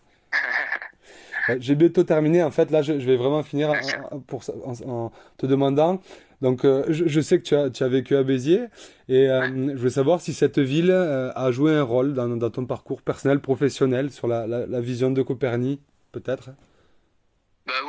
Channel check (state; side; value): identical; both; correlation 1.00